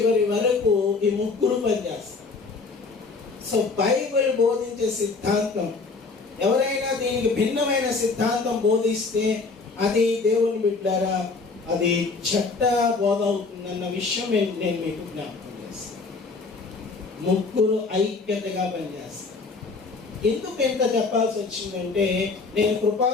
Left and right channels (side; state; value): right; quieter; 4.2 dB